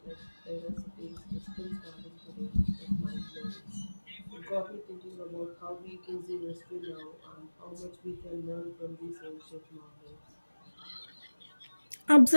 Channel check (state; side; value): inverted; both; correlation -1.00